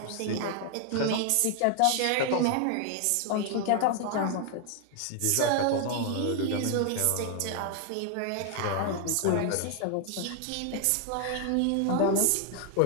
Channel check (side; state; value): both; different; correlation 0.00